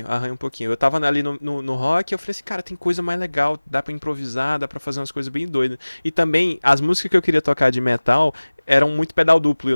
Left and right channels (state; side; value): inverted; both; correlation -1.00